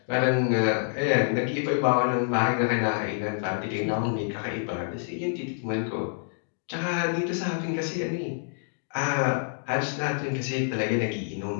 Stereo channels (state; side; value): silent; right; digital silence